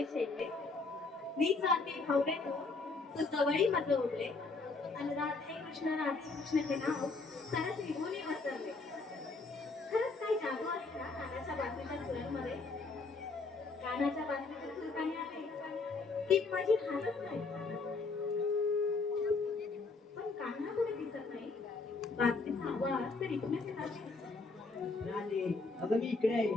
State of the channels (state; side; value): quieter; right; 3.9 dB